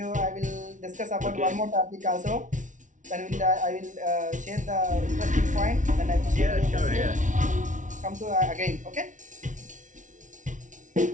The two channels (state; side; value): late; left; 0.37 ms